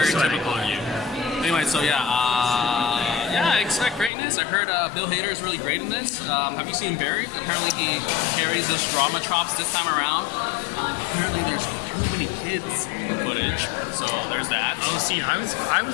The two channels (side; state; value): right; drops out; at 4.1 s